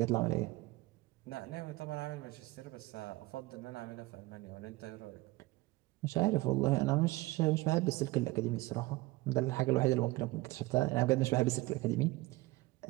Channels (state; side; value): quieter; left; 20.1 dB